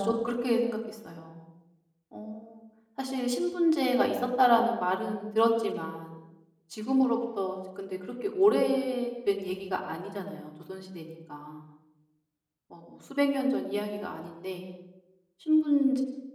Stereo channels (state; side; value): identical; both; correlation 1.00